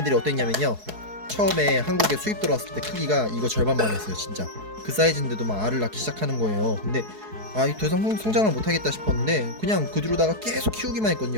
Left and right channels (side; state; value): left; late; 4.7 ms